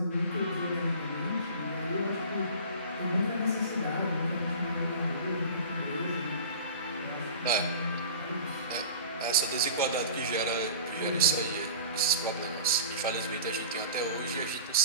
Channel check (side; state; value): both; inverted; correlation -0.38